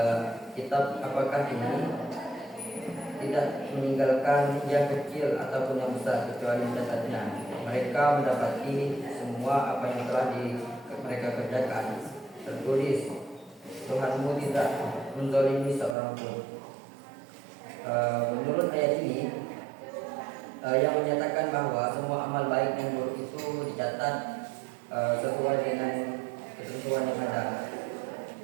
kitab apakah ini tidak meninggalkan yang kecil ataupun yang besar kecuali mencatatnya. Mereka mendapati semua apa yang telah mereka kerjakan tertulis. Tuhanmu tidak menzalimi seorang pun. Menurut ayat ini yang menyatakan bahwa semua amal baik dan buruk itu dicatat sesuai dengan ketentuan yang ada.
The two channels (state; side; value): drops out; left; at 16.0 s